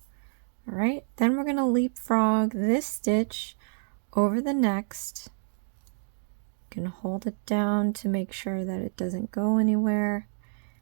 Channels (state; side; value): silent; left; digital silence